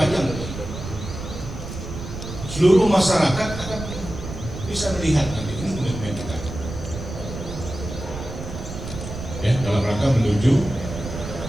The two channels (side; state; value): right; noise; rumble, 9 dB below the sound